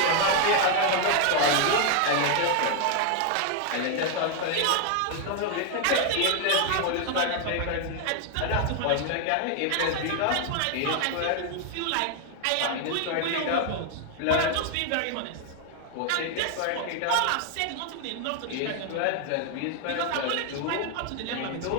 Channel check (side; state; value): both; different; correlation 0.00